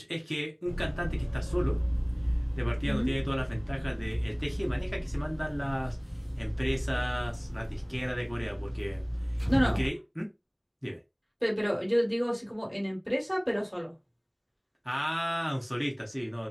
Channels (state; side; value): identical; both; correlation 1.00